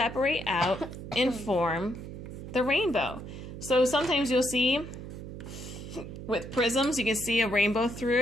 out and form the rainbow. So sometimes you'll see with prisms, you can see a rainbow through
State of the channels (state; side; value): noise; right; hum, 10 dB below the sound